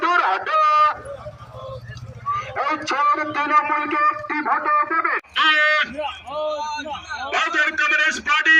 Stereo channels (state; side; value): identical; both; correlation 1.00